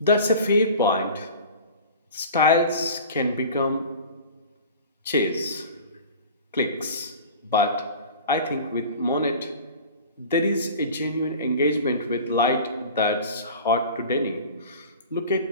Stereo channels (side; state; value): both; inverted; correlation -0.39